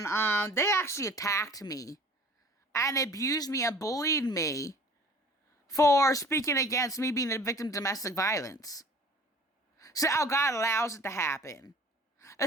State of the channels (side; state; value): both; normal; correlation 0.48